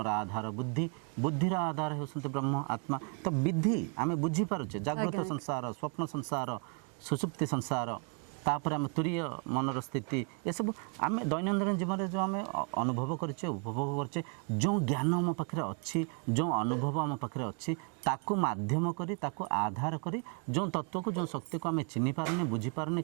आधार बुद्धि बुद्धिर आधार होसंते ब्रह्म आत्मा तो विधि आमे बुझी पारुचे जागृत संसार स्वप्न संसार सुसुप्ति संसार तापर आम तुरीय मनर स्थिति ये सब आम दैनंदिन जीवन में जो आम अनुभव करचे उपभोग करचे जो ज्ञान आम पाखे अच्छी जो अनुभव आम पाखे अच्छी ताकू माध्यम करी ताकू आधार करी जो तत्व को जो शक्ति को आम चिन्ह पारने बुझी पारने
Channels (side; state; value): left; quieter; 37.9 dB